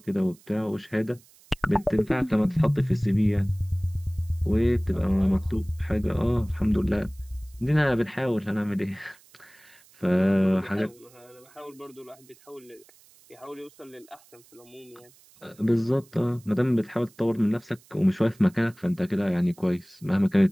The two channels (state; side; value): noise; right; hiss, 27 dB below the sound